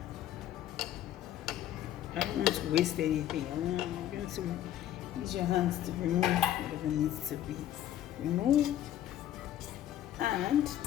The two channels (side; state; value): right; quieter; 11.9 dB